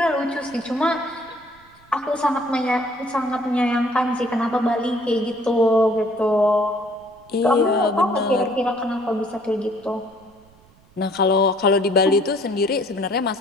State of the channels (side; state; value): right; noise; rumble, 29 dB below the sound